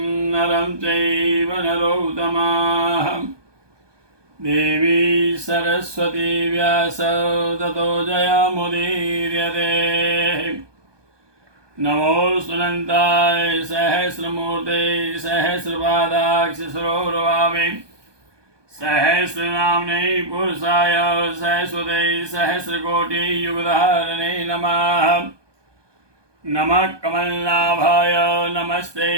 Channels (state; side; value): late; left; 1.2 ms